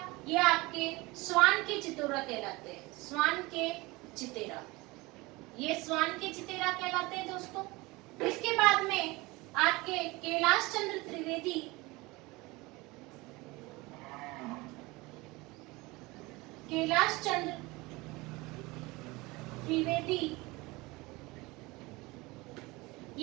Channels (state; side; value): quieter; left; 22.8 dB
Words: ये आपके स्वान के चितेरा कहलाते हैं। स्वान के चितेरा, ये स्वान के चितेरा कहलाते हैं दोस्तों। इसके बाद में आपके कैलाश चंद्र त्रिवेदी। कैलाश चंद्र त्रिवेदी,